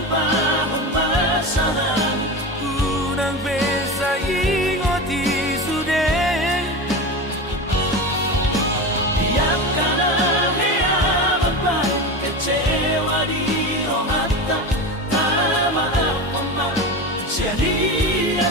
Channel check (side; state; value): both; normal; correlation 0.24